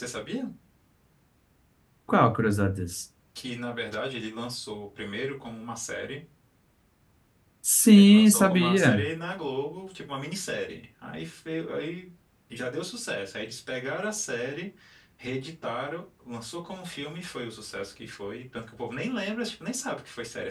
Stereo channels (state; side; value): identical; both; correlation 1.00